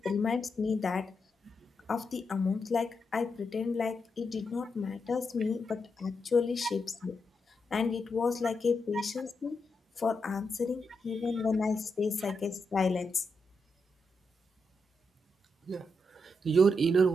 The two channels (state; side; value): normal; both; correlation 0.84